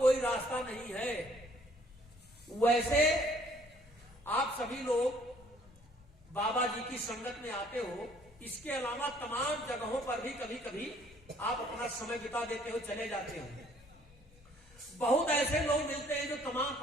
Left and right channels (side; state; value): both; normal; correlation 0.60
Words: रास्ता नहीं है। वैसे आप सभी लोग बाबा जी की संगत में आते हो, इसके अलावा तमाम जगहों पर भी कभी कभी आप अपना समय बिता देते हो, चले जाते हो। बहुत ऐसे लोग मिलते हैं जो तमाम